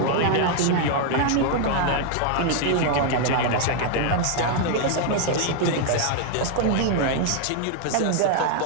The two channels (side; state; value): both; different; correlation 0.00